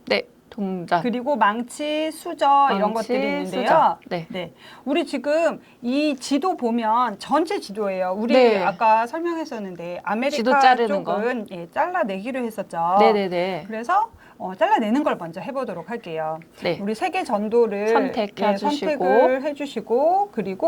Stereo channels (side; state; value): both; identical; correlation 1.00